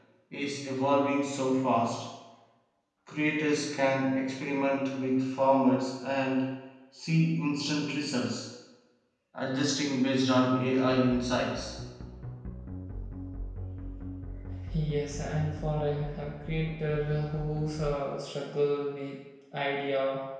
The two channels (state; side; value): identical; both; correlation 1.00